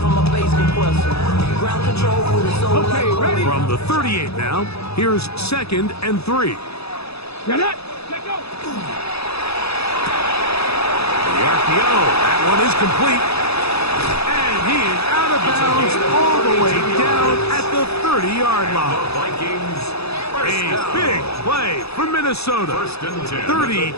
from my bass compressor. Ground control with a soul like ready. From the 38 now, here's 2nd and 3. Get it! The RPO, that one is complete. And he is out of bounds all the way down at the 30-yard line. Vikings A big play for Minnesota.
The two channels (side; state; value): right; late; 0.78 ms